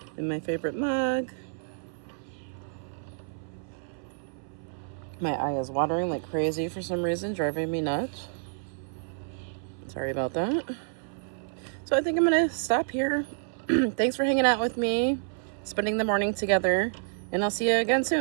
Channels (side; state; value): left; silent; 57 dB below the other